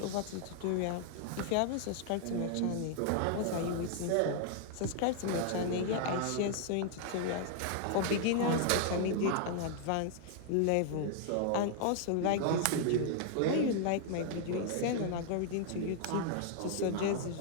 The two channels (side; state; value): both; different; correlation 0.00